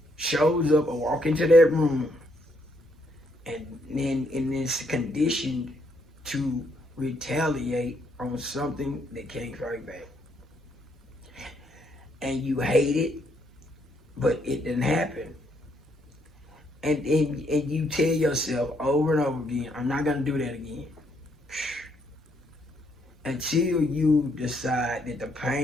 shows up or walk into that room, and then it's conditioned to retaliate on something that can't fight back. And you hate it, but it didn't happen. And you tell yourself over and over again, I'm not going to do that again. Until you decide that the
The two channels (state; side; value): normal; both; correlation 0.72